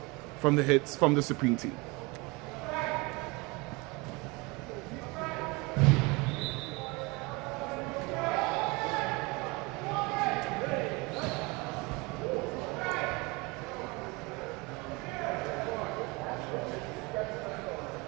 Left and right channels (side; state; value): left; quieter; 26.0 dB